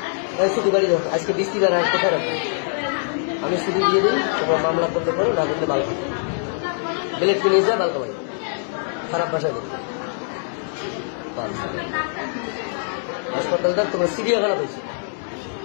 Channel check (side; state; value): right; silent; digital silence